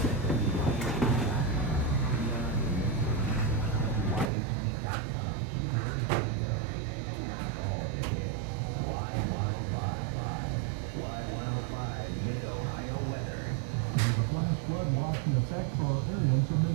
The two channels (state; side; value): drops out; left; at 4.3 s